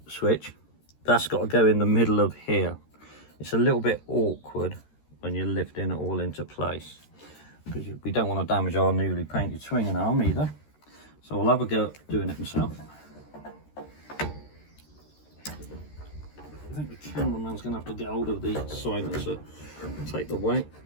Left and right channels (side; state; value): right; late; 13 ms